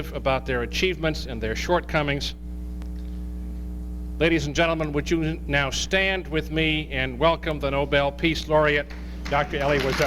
about their achievements and their shortcomings. Ladies and gentlemen, would you now stand with me and welcome the Nobel Peace Laureate, Dr. Elie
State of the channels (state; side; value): identical; both; correlation 1.00